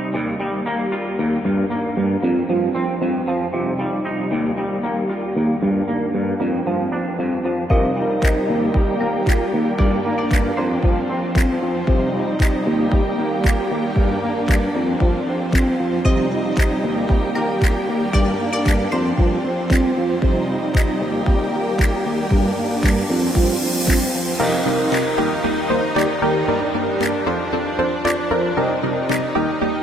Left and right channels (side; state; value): both; normal; correlation 0.81